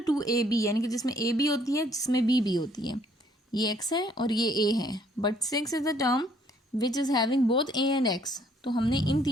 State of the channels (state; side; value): normal; both; correlation 0.63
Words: 2ab, यानी कि जिसमें a भी होती है जिसमें b भी होती है। ये x है और ये a है, but 6 is the term which is having both a and x। तो हमने इन